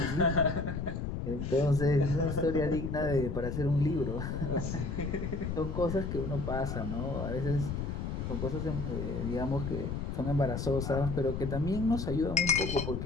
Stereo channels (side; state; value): left; noise; rumble, 3 dB below the sound